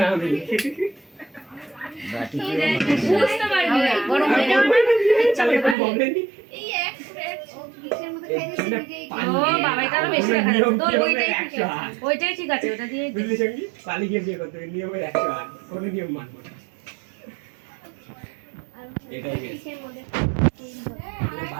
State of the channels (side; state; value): left; drops out; at 5.8 s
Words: আমি। বাটি দিয়ে বুঝতে পারবি না গরম হয়ে যাবে চালে কোনো বলেনি। এই এক কিসের মধ্যে খাই দিছি ও বাবা এটা আরো বেশি দেখা যাচ্ছে তোর ওইটাই ঠিক 100 আছে ওইটাই ঠিক আছে ওটা দিয়ে বুঝলি সঙ্গী, পালি গিয়ে বিয়ে করতে হবে, নিয়মের 108, কোনো নিয়ম মানবো না। এটাই বেশ।